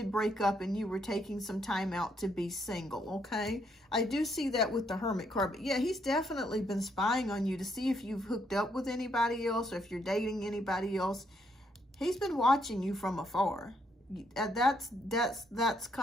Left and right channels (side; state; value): both; normal; correlation 0.73